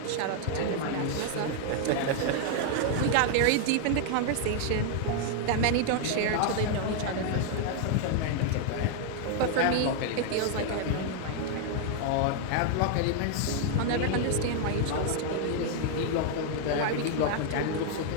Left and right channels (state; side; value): different; both; correlation 0.00